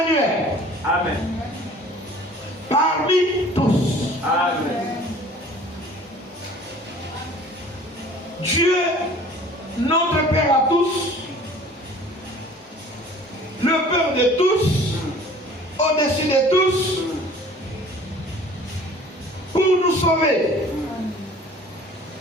Amen. Parmi tous. Amen. Dieu, notre Père à tous, le Père de tous, au-dessus de tous, pour nous sauver.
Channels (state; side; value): normal; both; correlation 0.48